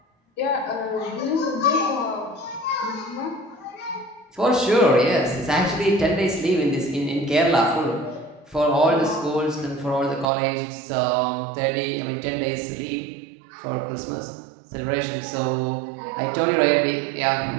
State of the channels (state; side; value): drops out; left; at 10.2 s